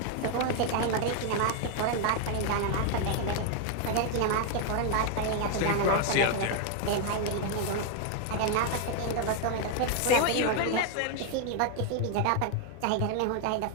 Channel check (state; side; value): different; both; correlation 0.00